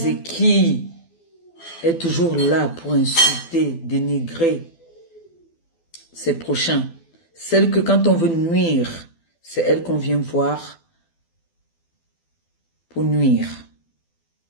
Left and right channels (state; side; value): late; right; 12 ms